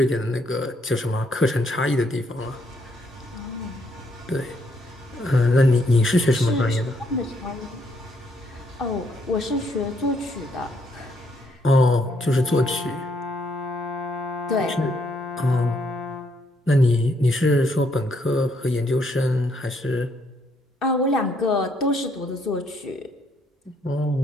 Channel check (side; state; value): both; normal; correlation 0.72